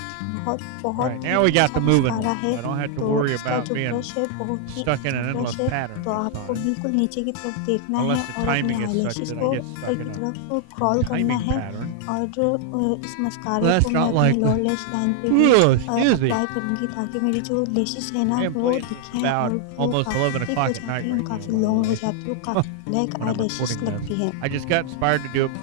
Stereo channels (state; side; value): different; both; correlation 0.00